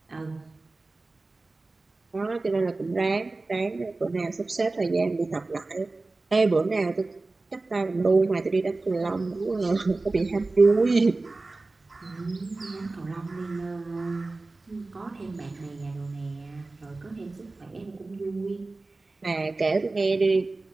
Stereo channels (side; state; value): left; quieter; 3.3 dB